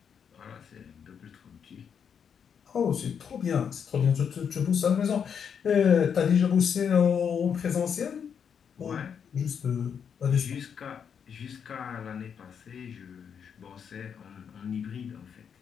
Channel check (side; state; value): right; quieter; 7.3 dB